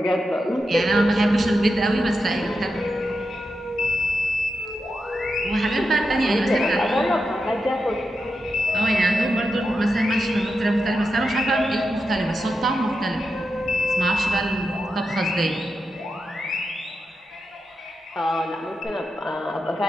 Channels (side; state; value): both; normal; correlation 0.88